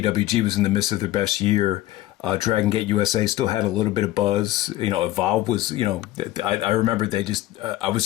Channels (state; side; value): quieter; right; 15.7 dB